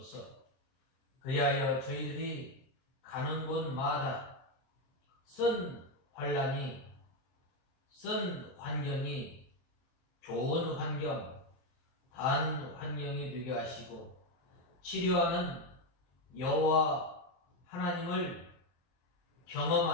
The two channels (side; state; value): right; late; 23 ms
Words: 그리하여 저희들이 가는 곳마다 쓴 환난이, 쓴 환경이 좋은 환경, 단 환경이 되게 하시고, 치료하는 여호와 하나님을